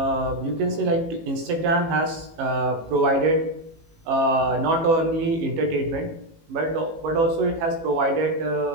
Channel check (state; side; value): late; left; 18 ms